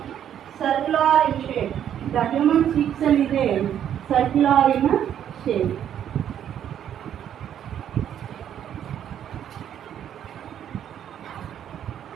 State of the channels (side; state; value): left; quieter; 9.9 dB